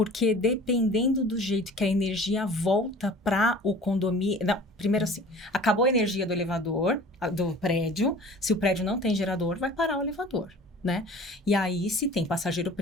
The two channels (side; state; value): both; normal; correlation 0.45